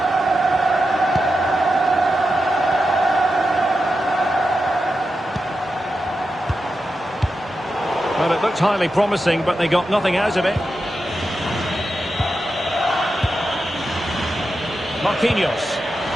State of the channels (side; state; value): both; normal; correlation 0.89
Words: Well, it looked highly promising, but they got nothing out of it. Marquinhos.